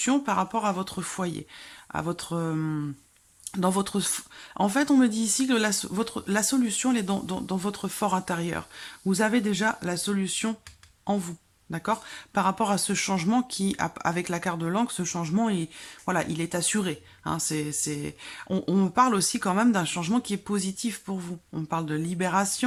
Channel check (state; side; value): identical; both; correlation 1.00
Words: par rapport à votre foyer, à votre... dans votre... En fait, on me dit ici que la solution, elle est dans votre fort intérieur. Vous avez déjà la solution en vous. D'accord. Par rapport à ce changement qui, avec la carte de l'encre, ce changement, voilà, il est assuré. Hein, on me parle aussi quand même d'un changement qui est positif pour vous. On me parle de